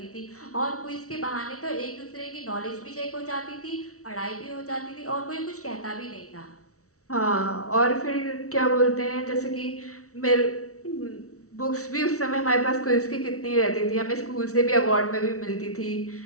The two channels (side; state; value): right; late; 0.64 ms